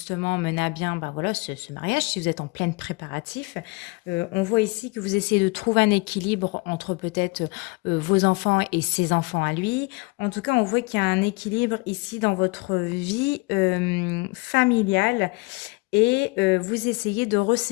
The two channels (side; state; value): right; quieter; 26.7 dB